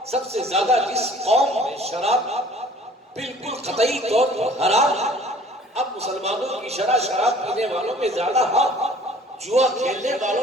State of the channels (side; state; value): both; normal; correlation 0.52